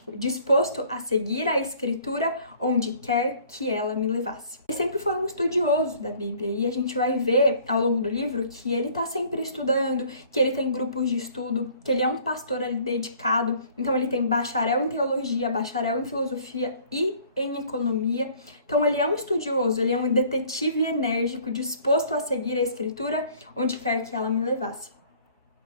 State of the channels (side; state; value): both; inverted; correlation -0.55